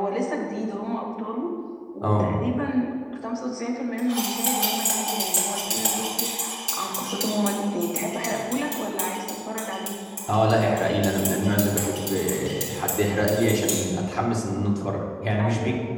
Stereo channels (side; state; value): both; identical; correlation 1.00